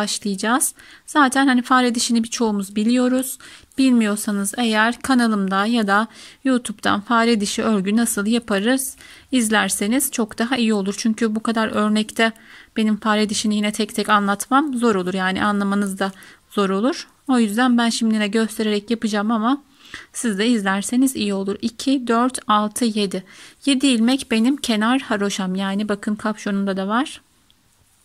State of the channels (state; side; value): identical; both; correlation 1.00